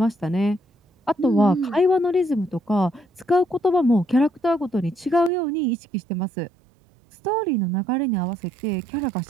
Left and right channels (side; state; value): left; drops out; at 5.3 s